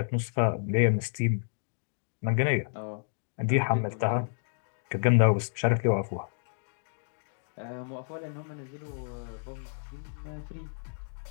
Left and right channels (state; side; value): silent; right; digital silence